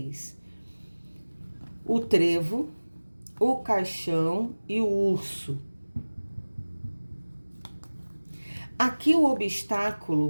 O trevo, o caixão e o urso. Aqui o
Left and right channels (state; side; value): inverted; both; correlation -1.00